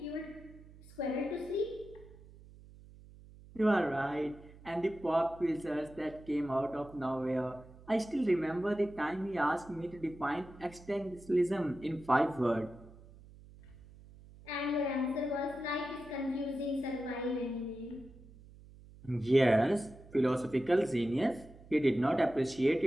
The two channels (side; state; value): right; noise; hum, 21 dB below the sound